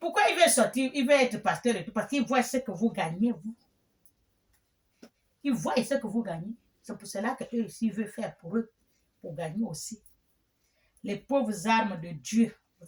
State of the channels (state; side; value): identical; both; correlation 1.00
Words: il veut sortir, il veut être pasteur et tout? Parce qu'il voit ce que vous gagnez, vous. Il voit ce que vous gagnez. C'est pour cela qu'eux aussi veulent faire pour eux, pour gagner aussi. Les pauvres armes de Dieu,